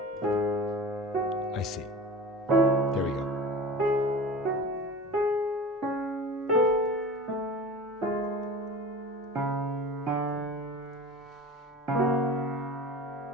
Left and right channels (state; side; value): normal; both; correlation 0.36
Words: I see. There we go.